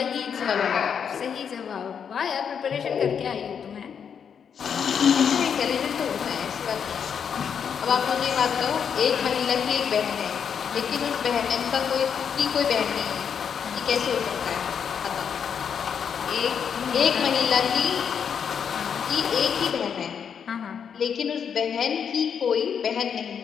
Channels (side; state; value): right; quieter; 7.3 dB